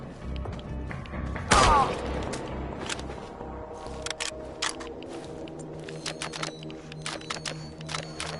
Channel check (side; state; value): both; identical; correlation 1.00